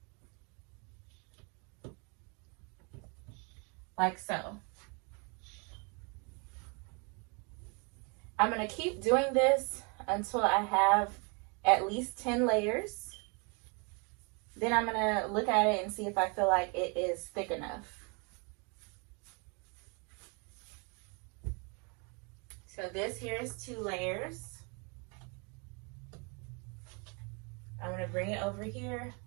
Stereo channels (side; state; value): left; quieter; 33.6 dB